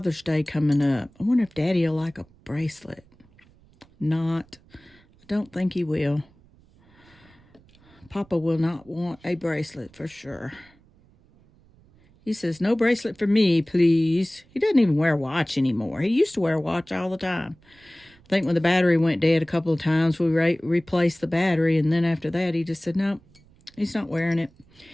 Day coming up. I wonder if Daddy will like a bracelet. Not. I don't think he will. Papa will not want a bracelet for sure. He says, no bracelet for me, please. He doesn't even wear a watch anymore. He used to wear a watch all the time. I think when the battery went dead a couple of times, we replaced the battery. And then after that, he just said, no, he's not wearing it.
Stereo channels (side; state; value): right; noise; rumble, 29 dB below the sound